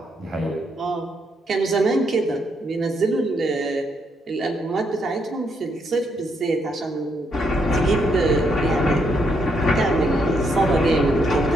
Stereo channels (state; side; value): normal; both; correlation 0.76